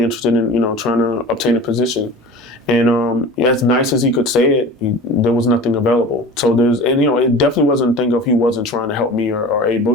interested in, you know, trying to obtain a position. And as nice as he could say it, there was nothing available. So and you know, it definitely wasn't a thing of he wasn't trying to help me or A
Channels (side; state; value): both; normal; correlation 0.37